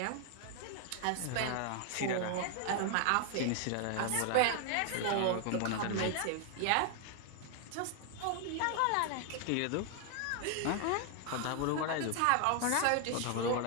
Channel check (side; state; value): both; different; correlation 0.00